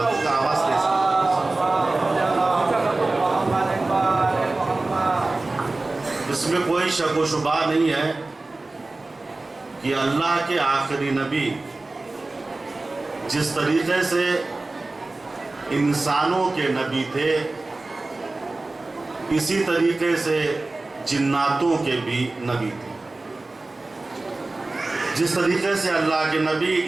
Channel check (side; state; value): left; quieter; 3.2 dB